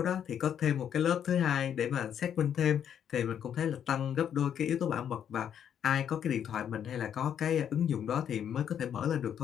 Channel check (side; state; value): right; quieter; 9.0 dB